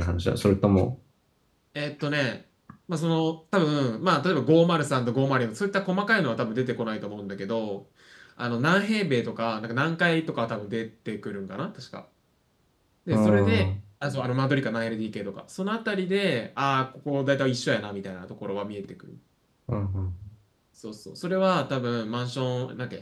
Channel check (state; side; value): identical; both; correlation 1.00